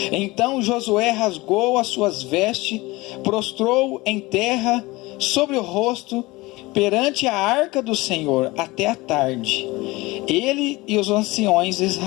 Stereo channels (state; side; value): quieter; right; 21.5 dB